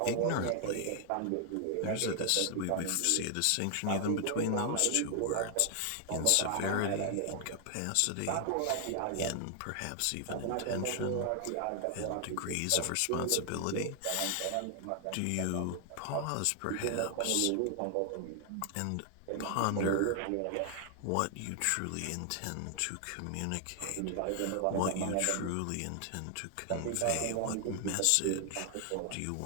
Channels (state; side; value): different; both; correlation 0.00